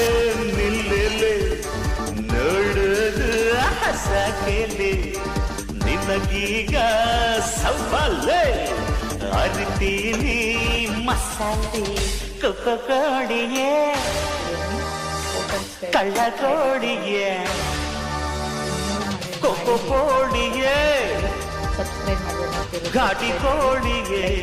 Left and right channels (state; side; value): identical; both; correlation 1.00